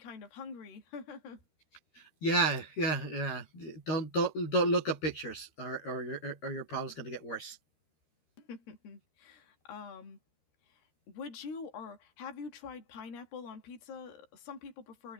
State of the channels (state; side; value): late; right; 13 ms